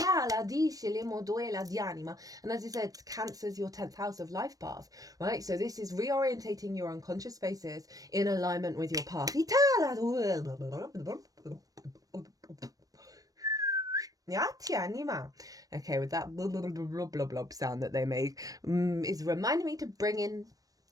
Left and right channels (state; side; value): late; left; 0.18 ms